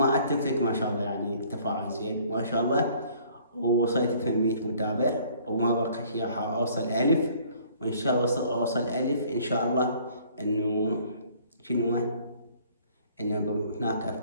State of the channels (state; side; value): inverted; both; correlation -0.57